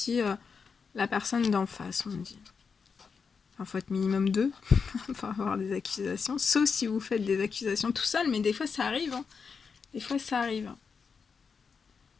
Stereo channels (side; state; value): right; quieter; 5.6 dB